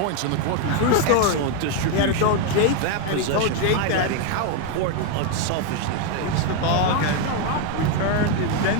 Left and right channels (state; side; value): different; both; correlation 0.01